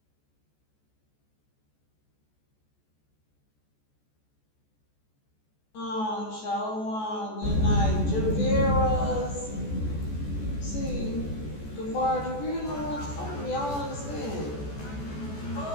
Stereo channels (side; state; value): right; late; 14 ms